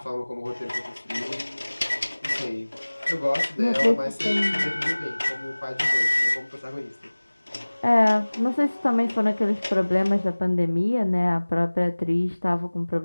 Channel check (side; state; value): both; inverted; correlation -1.00